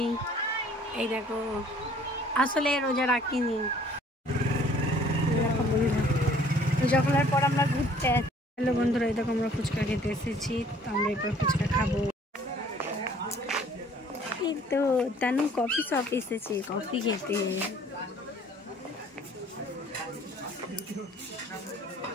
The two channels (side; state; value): both; normal; correlation 0.56